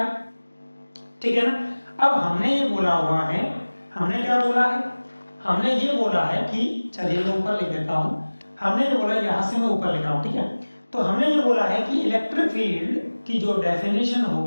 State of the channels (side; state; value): both; inverted; correlation -1.00